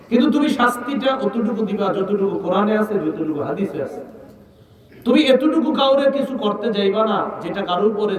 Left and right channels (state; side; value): identical; both; correlation 1.00